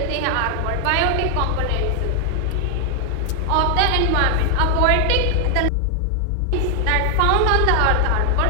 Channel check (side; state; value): both; different; correlation 0.00